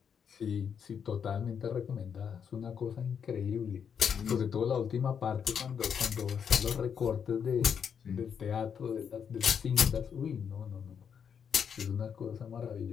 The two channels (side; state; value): right; quieter; 7.4 dB